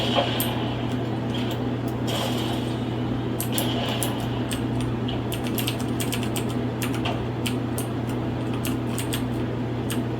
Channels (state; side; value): identical; both; correlation 1.00